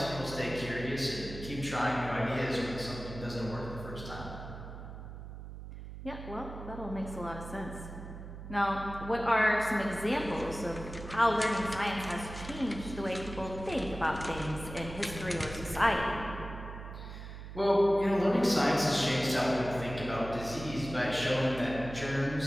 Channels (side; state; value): right; noise; hum, 11 dB below the sound